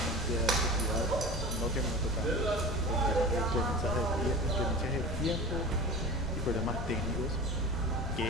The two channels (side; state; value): left; noise; rumble, 6 dB below the sound